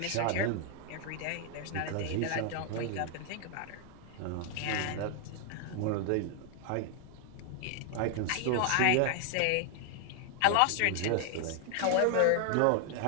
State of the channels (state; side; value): different; both; correlation 0.00